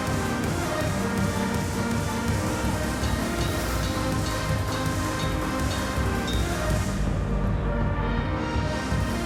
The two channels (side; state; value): both; identical; correlation 1.00